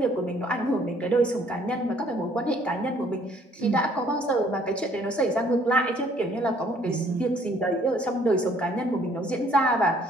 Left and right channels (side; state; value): both; normal; correlation 0.61